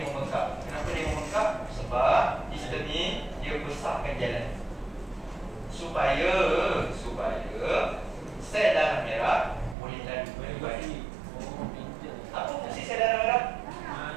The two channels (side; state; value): left; drops out; at 9.8 s